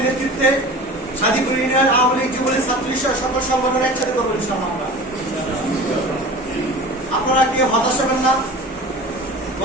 নেতৃত্বে সাদিপুর ইউনিয়ন আওয়ামী লীগ, যুবলীগ, ছাত্রলীগ সকল সংগঠন একসাথে করবো ইনশাআল্লাহ। আপনারা কেউ হতাশ হবেন না,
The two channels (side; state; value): both; normal; correlation 0.37